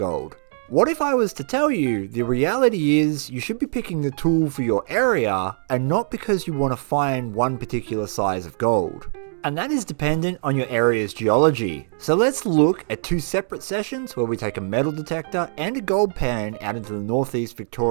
What if I was to tell you the reality is you should be picking the tool for your area and not because you want to find one particular size of gold? And that is dependent on your area's geology. So let's look at two separate sessions where we take a metal detector and a gold pan out into the northeast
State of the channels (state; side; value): silent; left; digital silence